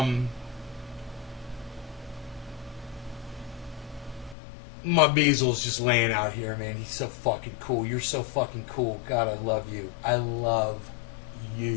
My Beasel's just laying out here, man. He's so fucking cool. You're so fucking cool. God, I love you. I love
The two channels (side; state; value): right; drops out; at 4.4 s